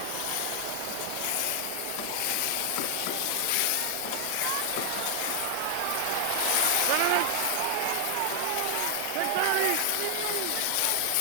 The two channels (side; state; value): both; different; correlation 0.00